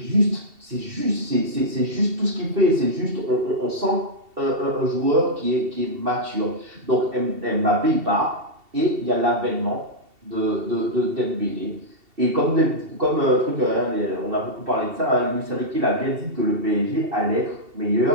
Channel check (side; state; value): left; late; 2.7 ms